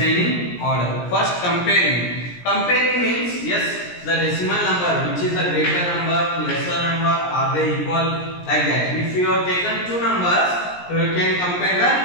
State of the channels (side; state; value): right; late; 17 ms